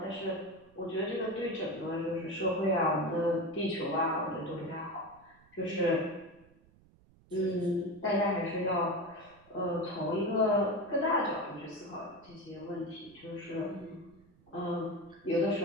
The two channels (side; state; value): right; noise; rumble, 28 dB below the sound